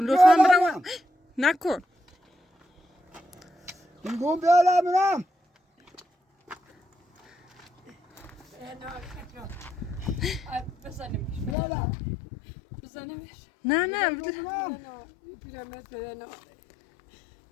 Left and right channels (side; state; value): right; drops out; at 11.6 s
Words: لطفا برم نکن میگم بیارم بزنیمش بیارم بزنیمش نه نه پیرمرد بدن